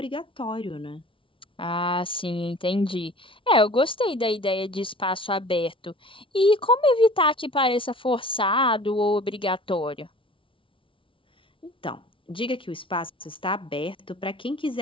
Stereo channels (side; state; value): right; late; 0.25 ms